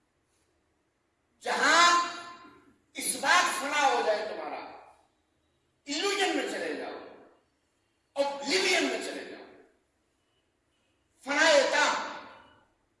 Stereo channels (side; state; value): both; identical; correlation 1.00